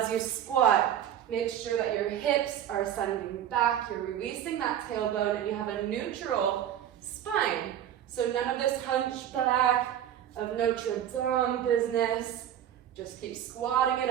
you squat, make sure that your hips are sending back, you're releasing that tailbone, and you have a neutral spine. So none of this hunchback of Notre Dame business. Just keep squatting it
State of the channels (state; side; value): quieter; left; 10.5 dB